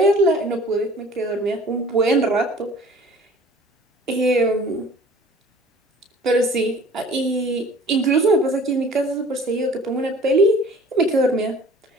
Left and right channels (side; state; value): both; normal; correlation 0.49